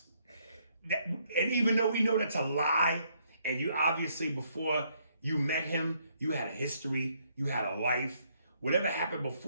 And even though we know that's a lie, and you obviously before you met him, you had a history, you had a life, whatever happened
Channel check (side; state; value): both; inverted; correlation -0.71